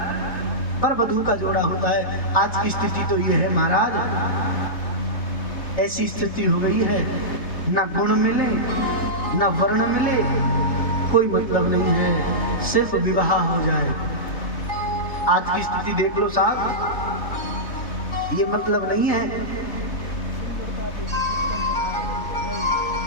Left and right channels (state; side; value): late; right; 3.6 ms